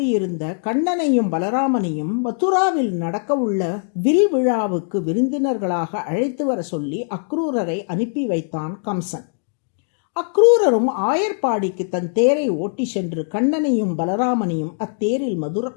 கண்ணனையும் பலராமனையும் மதுராவில் நடக்கவுள்ள வில் விழாவுக்கு விருந்தினர்களாக அழைத்து வர சொல்லி அக்ரூரரை அனுப்பி வைத்தான் கம்சன். அக்ரூரரும் ஆயர்பாடிக்கு தன் தேரை ஓட்டி சென்று கண்ணனையும் பலராமனையும் அத்தேரில்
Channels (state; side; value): silent; right; 60 dB below the other